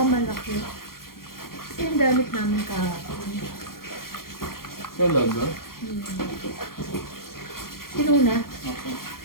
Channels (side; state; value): right; late; 0.92 ms